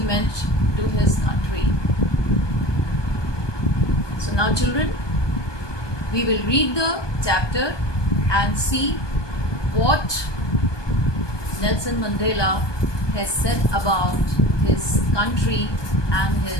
to his country. So now, children, we will read the chapter and see what Nelson Mandela has said about his country and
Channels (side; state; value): right; late; 1.2 ms